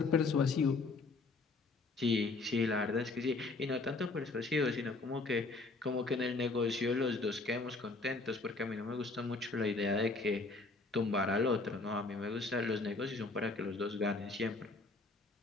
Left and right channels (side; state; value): right; quieter; 3.6 dB